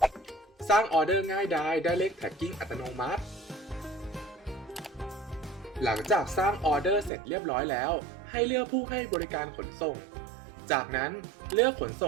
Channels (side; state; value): left; drops out; at 7.1 s